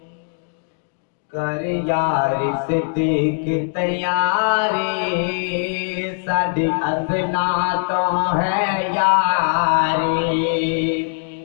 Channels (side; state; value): right; silent; digital silence